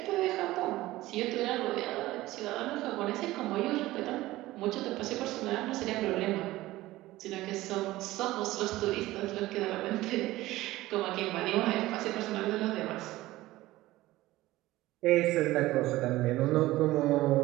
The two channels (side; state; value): left; quieter; 17.3 dB